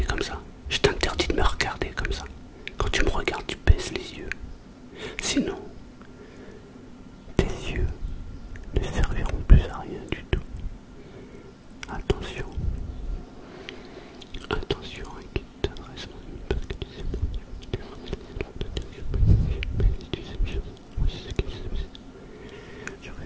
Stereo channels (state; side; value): identical; both; correlation 1.00